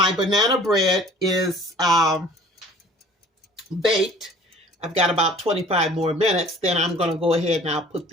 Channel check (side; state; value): both; normal; correlation 0.50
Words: banana bread is baked, I've got about 25 more minutes, then I'm going to go ahead and I'll put